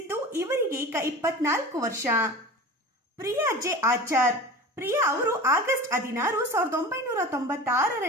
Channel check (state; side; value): normal; both; correlation 0.34